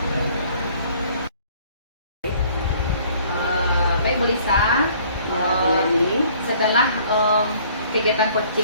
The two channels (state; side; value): inverted; both; correlation -0.57